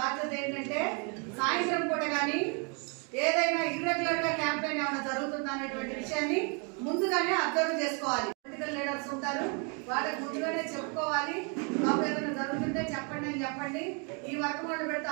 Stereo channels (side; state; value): left; quieter; 35.9 dB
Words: ఏంటంటే సాయంత్రం పూట కానీ ఏదైనా ఇర్రెగ్యులర్ గా క్యాంపెయిన్ ఏమైనా జరుగుతుందా అనేటువంటి విషయాన్ని ముందుగానే అబ్జర్వ్ చేసుకోవాలి. పొలిటికల్ లీడర్స్ ఉంటారు, వాళ్ళకి ముందుగానే చెప్పుకోవాలి. బాబు ఏదైనా జరుగుతుంటే చెప్పండి అని చెప్పండి. ఈ వర్క్ వాళ్ళు పెడితే